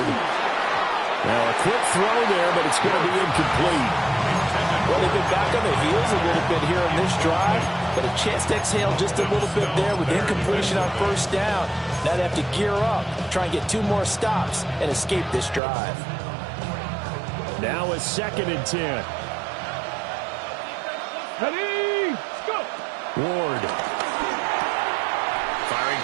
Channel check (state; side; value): drops out; left; at 15.6 s